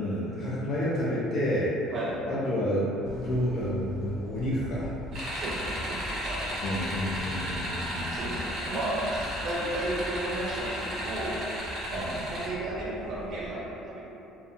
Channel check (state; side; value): normal; both; correlation 0.56